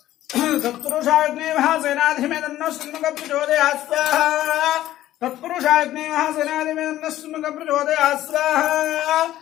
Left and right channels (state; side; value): quieter; right; 13.9 dB